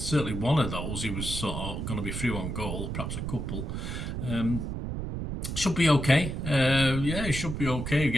one of those he was sort of going to be through on goal, perhaps a couple. Should be okay. He should be okay. He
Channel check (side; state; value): right; noise; rumble, 4 dB below the sound